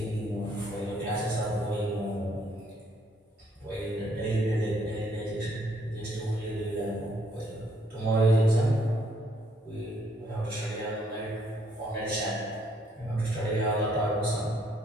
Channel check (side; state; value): both; normal; correlation 0.69